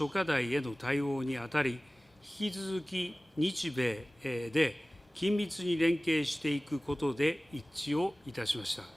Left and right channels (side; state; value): both; normal; correlation 0.98